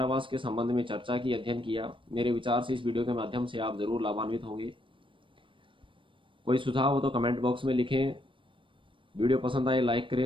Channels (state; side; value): late; left; 0.25 ms